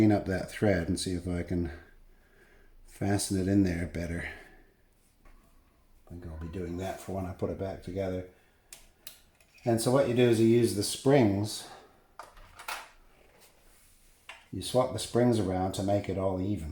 up that thread and see if I can fasten it in there better. I think I'll be doing that for when I put it back together. And so what you do is you use the springs. You swap the springs around to make it all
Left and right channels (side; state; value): both; identical; correlation 1.00